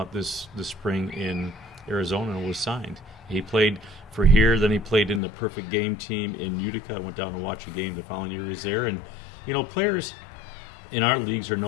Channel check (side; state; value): right; drops out; at 5.2 s